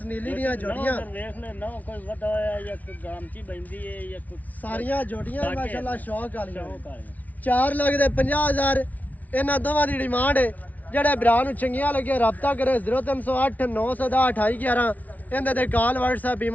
ਨੀਲੀ ਦੀਆਂ ਜੋੜੀਆਂ ਵੇਖ ਲੈ ਨਾ ਕੋਈ ਵੱਡਾ ਹੋਇਆ ਜਾਂ ਕੋਈ ਗਾਮਚੀ ਬੈਂਦੀ ਹੈ ਜਾਂ ਕੋਈ ਸਾਰੀਆਂ ਜੋੜੀਆਂ ਮਾਸ਼ਾਅੱਲਾ ਸ਼ੌਕ ਵਾਲੀਆਂ ਸ਼ੌਕ ਵਾਲੀਆਂ 4 ਲੱਖ ਦੇ 50,000 ਇਹਨਾਂ ਦੋਵਾਂ ਦੀ ਡਿਮਾਂਡ ਹੈ। ਜਿਹੜੇ ਭਰਾ ਨੂੰ ਚੰਗੀਆਂ ਲੱਗੀਆਂ ਰਾਬਤਾ ਕਰੇ 0308 910 2811 ਇਹਦੇ ਤੇ ਕਾਲ WhatsApp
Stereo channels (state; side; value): late; right; 0.075 ms